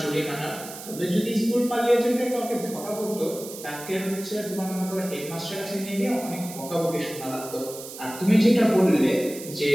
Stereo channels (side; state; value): right; noise; hiss, 13 dB below the sound